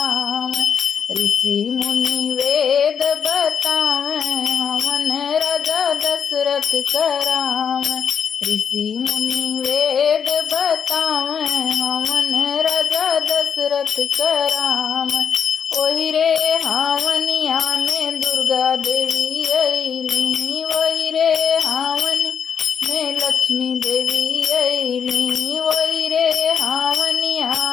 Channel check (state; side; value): quieter; right; 7.4 dB